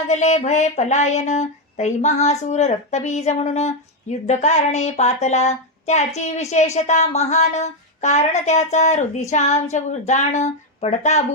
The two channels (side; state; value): both; normal; correlation 0.04